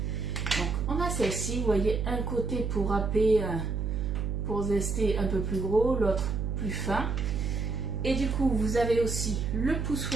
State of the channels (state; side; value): noise; right; hum, 1 dB below the sound